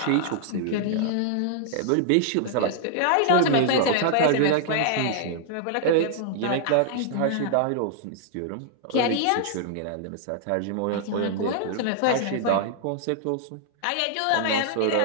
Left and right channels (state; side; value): different; both; correlation -0.01